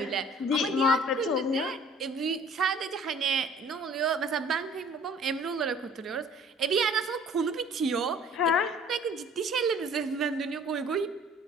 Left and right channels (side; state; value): both; normal; correlation 0.51